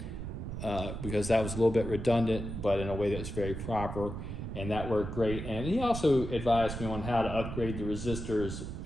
because that was a little bit redundant, but in a way that was very proper, and that worked great. And he also advised me on how to upgrade the resistors,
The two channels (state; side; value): noise; right; rumble, 6 dB below the sound